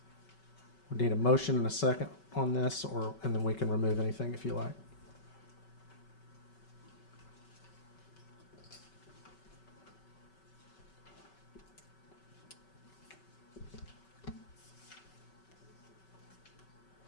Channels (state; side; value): late; right; 5.3 ms